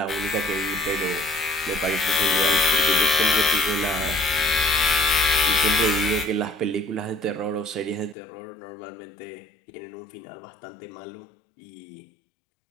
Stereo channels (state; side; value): drops out; right; at 8.2 s